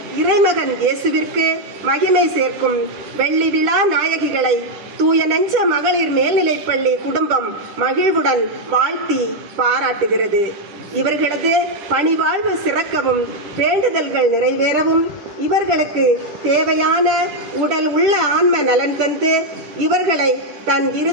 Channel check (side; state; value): left; late; 10 ms